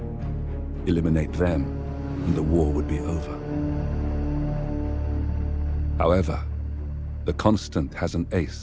Eliminate them, and the war would be over. However, the Constant has an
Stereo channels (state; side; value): identical; both; correlation 1.00